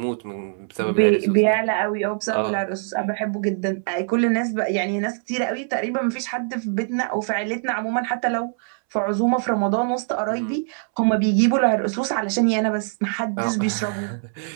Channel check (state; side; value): silent; left; 63 dB below the other